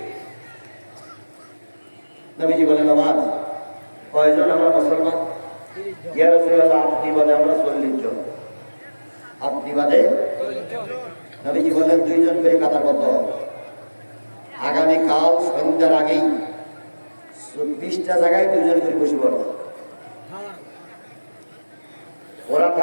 নবীজি বলেন, আমার কয়জন আমরা মুসলমান? ইয়া রাসূলুল্লাহ, আপনি বাদে আমরা 40 জন। আপনি বাদে? নবীজি বলেন, 2 জন করে কাতারবদ্ধ। আগামীকাল সন্ধ্যার আগেই 20টা জায়গায় 2 জন করে বসে পড়বে। ওরা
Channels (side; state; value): both; inverted; correlation -1.00